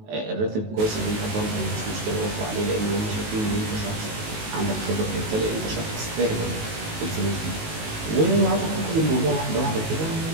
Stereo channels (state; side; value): late; left; 19 ms